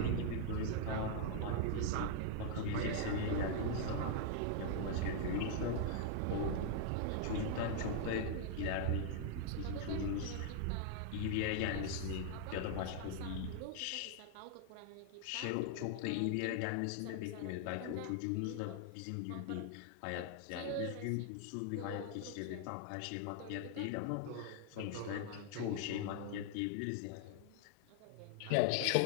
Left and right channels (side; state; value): both; different; correlation 0.00